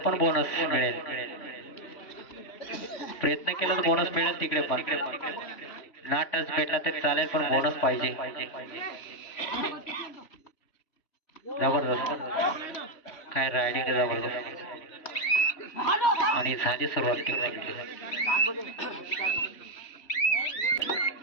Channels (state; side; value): late; right; 3.1 ms